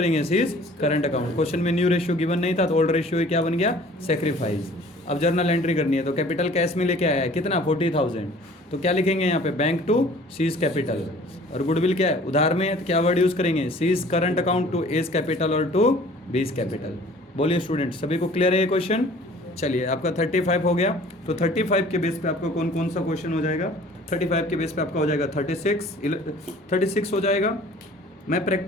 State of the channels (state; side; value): normal; both; correlation 0.50